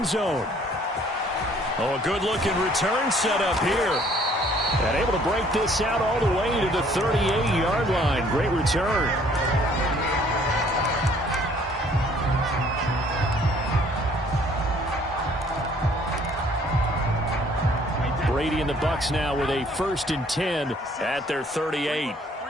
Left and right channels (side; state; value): both; normal; correlation 0.59